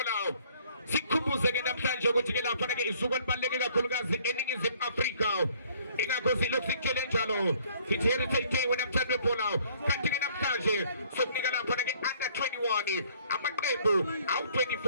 sikhumbuze ke namhlanje ukuthi ke lapha ke isuku elibaluleke kakhulukazi eNingizimu Afrika ingakho silokhu sikutshele njalo sithi Heritage Day namhlanje phola kanti ke namhlanje sokunika lapha ke under 21 amaqembu awu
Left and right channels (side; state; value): both; inverted; correlation -0.59